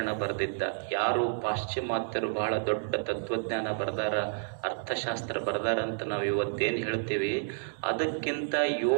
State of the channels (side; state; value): left; silent; digital silence